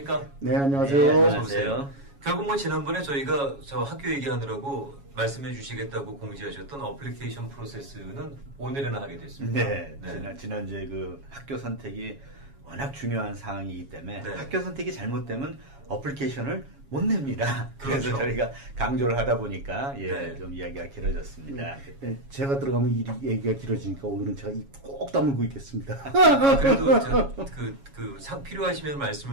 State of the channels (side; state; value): left; late; 7.2 ms